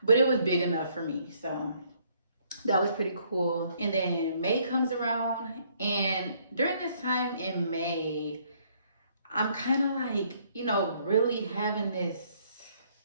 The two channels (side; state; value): both; inverted; correlation -0.66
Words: but it was big enough for me. So that was pretty cool. And then May comes around, and during this time in May, I'm kind of like, you know, really having this